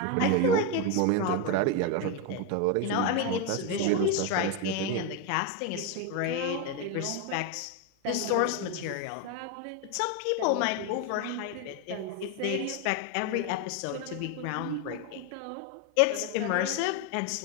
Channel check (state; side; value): different; both; correlation 0.02